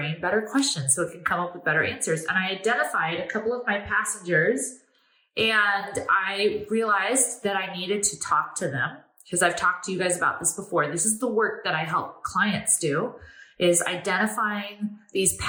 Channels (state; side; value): identical; both; correlation 1.00